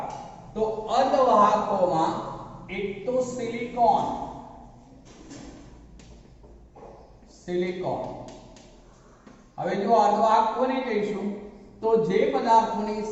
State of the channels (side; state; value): both; identical; correlation 1.00